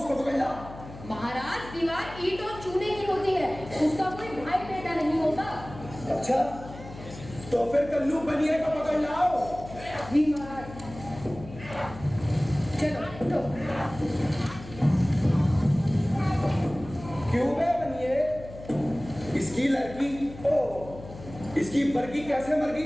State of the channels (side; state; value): left; noise; hum, 15 dB below the sound